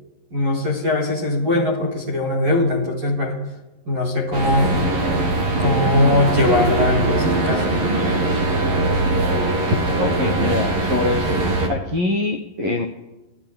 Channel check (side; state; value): left; late; 11 ms